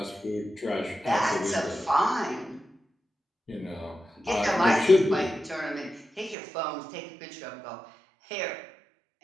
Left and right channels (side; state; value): left; drops out; at 6.4 s